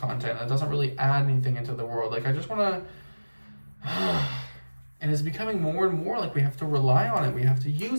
that doesn't really add anything into the world. Like, I just want to and it's becoming more and more like we have to rely on it, we have to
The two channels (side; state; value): both; inverted; correlation -1.00